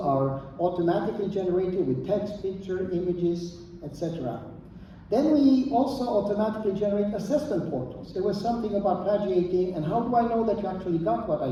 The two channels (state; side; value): identical; both; correlation 1.00